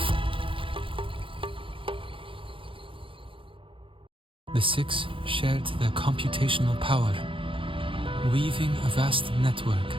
The six shared their computational power, weaving a vast network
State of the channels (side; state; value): left; late; 0.25 ms